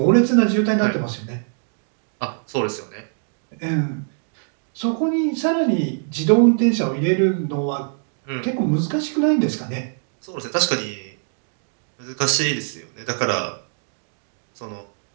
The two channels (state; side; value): silent; left; digital silence